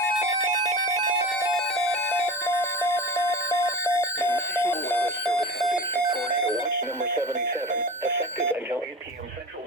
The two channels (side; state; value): both; normal; correlation 0.32